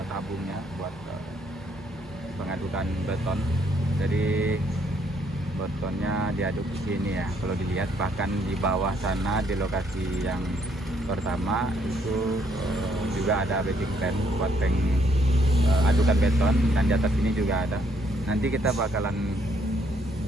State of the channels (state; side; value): normal; both; correlation 0.70